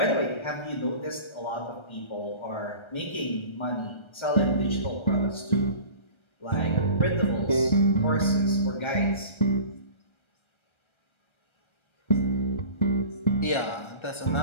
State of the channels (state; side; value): late; right; 1.3 ms